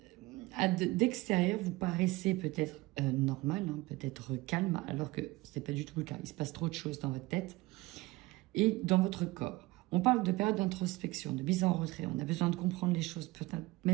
D'extérieur, vous paraissez peut-être normal, hein, peut-être calme, alors que ce n'est pas du tout le cas. Il se passe trop de choses dans votre tête. Et dans votre corps. On parle de période d'introspection, de mise en retrait. On a besoin de comprendre les choses, peut-être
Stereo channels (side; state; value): left; quieter; 20.9 dB